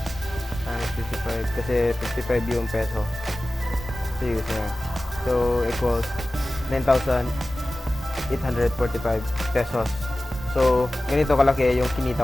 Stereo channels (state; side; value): normal; both; correlation 0.96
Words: times 55 kasi 55 yung peso. So, US na. So, equals 9,845 pesos. So, ganito kalaki yung